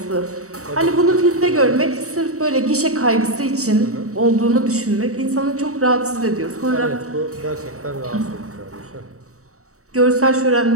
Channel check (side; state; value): left; late; 0.65 ms